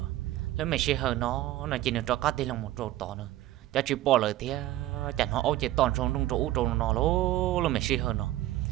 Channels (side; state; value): left; quieter; 15.0 dB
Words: lúc mẹ chỉ hờ nó chỉ được cho các tay lòng một chỗ to nữa cho chỉ bỏ lời tiếc chẳng họ ôi chỉ toàn trong trong chỗ nó lố lúc mẹ chỉ hờ nó